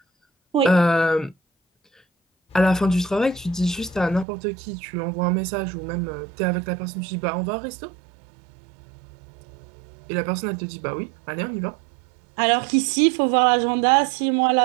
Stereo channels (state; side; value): drops out; left; at 4.2 s